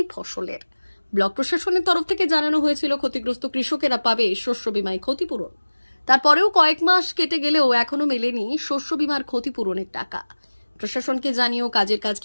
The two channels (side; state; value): both; inverted; correlation -1.00